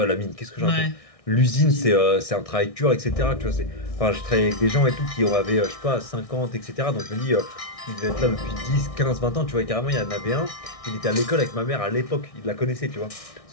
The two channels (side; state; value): right; late; 1.6 ms